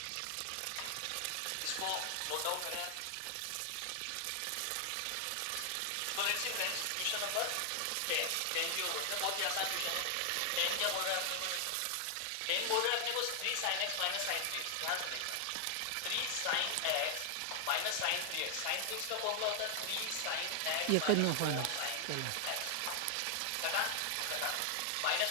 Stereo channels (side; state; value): both; different; correlation 0.00